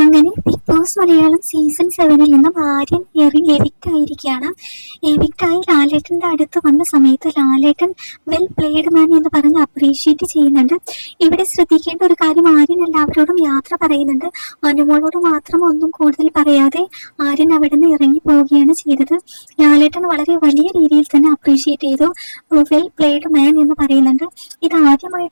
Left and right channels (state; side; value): inverted; both; correlation -1.00